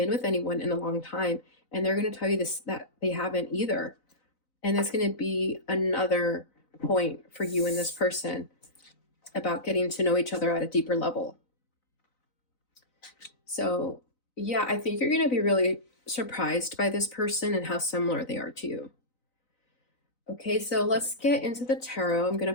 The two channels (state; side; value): late; right; 3.9 ms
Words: with anyone in a long time. And they're going to tell you this, that they haven't either. And that's going to be another point for you and this person about getting to know each other at a deeper level. So, yeah, I think you're going to be really surprised by this person and how similar they are to you. Okay, so let's get into the tarot. I'm going